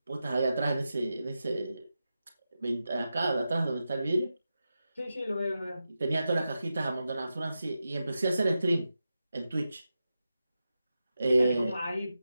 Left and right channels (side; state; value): both; inverted; correlation -0.90